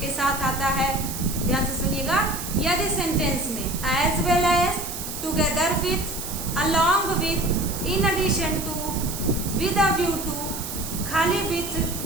साथ आता है। ध्यान से सुनिएगा, यदि सेंटेंस में as well as, together with, along with, in addition to, with a view to, खाली विथ,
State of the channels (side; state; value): right; noise; hiss, 7 dB below the sound